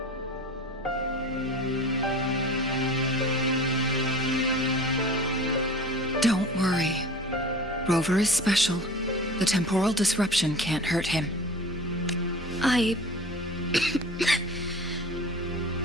Don't worry. Rover is special. The temporal disruption can't hurt him.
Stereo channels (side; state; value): both; normal; correlation 0.40